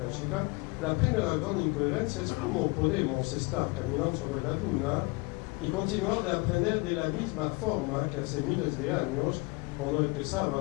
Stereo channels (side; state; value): right; quieter; 26.7 dB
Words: la primera gran incoherencia es cómo podemos estar caminando sobre la luna y continuar de aprender de la misma forma que hace miles de años, cuando